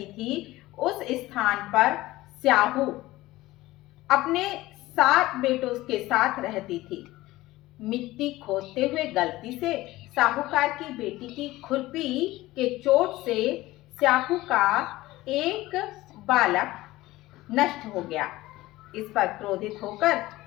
थी, उस स्थान पर स्याहू अपने 7 बेटों के साथ रहती थी। मिट्टी खोदते हुए गलती से साहूकार की बेटी की खुरपी के चोट से स्याहू का एक बालक नष्ट हो गया। इस पर क्रोधित होकर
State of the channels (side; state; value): right; quieter; 17.8 dB